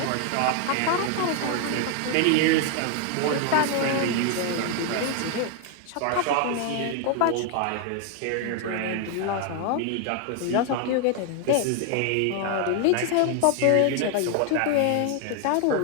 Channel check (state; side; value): different; both; correlation 0.00